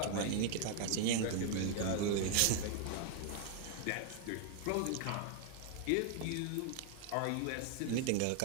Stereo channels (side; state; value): both; different; correlation 0.00